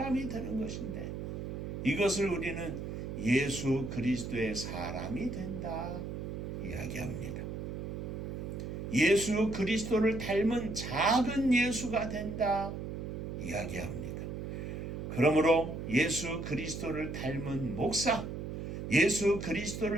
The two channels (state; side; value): noise; right; hum, 6 dB below the sound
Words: 되는 것인데 이것을 우리는 예수 그리스도의 사람이 된다 이야기합니다. 예수 그리스도를 닮은 작은 예수가 된다 이야기합니다. 그러므로 예수 그리스도를 닮은 목사, 예수